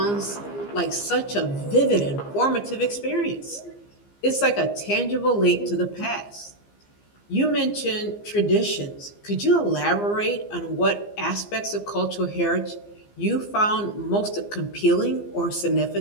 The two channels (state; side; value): late; right; 15 ms